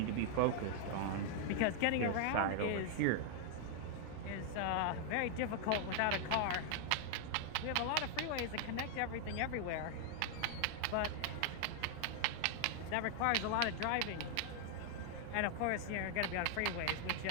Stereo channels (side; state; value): both; different; correlation 0.00